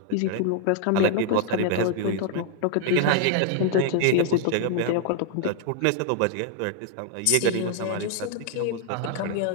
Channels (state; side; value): different; both; correlation 0.00